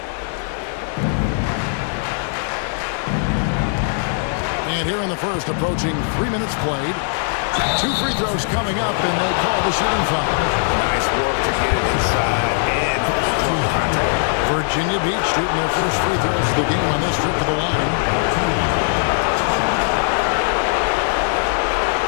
And here in the first, approaching 3 minutes played. 2 free throws coming up, and they call the shooting foul. Nice work to get it inside and draw contact. Virginia Beach shooting their first free throws of the game on this trip to the line.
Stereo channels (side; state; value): right; silent; 66 dB below the other